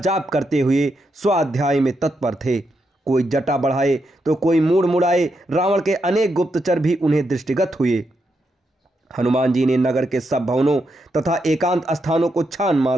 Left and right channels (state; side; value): normal; both; correlation 0.82